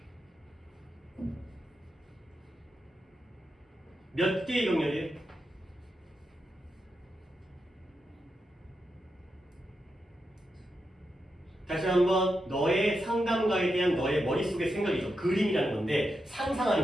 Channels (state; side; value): normal; both; correlation 0.87